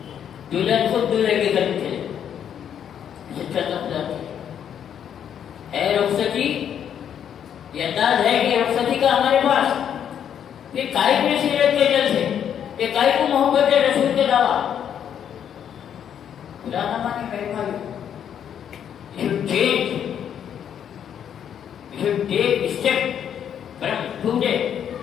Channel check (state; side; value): quieter; right; 9.0 dB